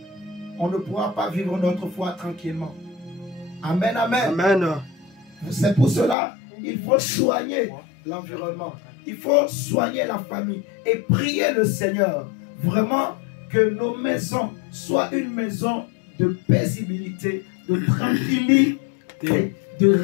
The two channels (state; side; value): drops out; right; at 6.2 s